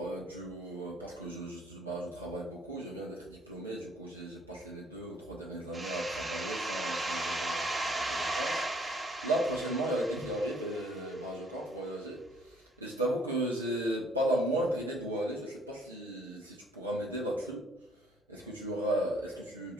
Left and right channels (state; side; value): normal; both; correlation 0.61